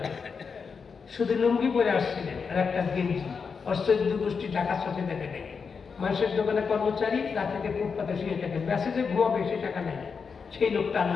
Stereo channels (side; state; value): right; quieter; 5.6 dB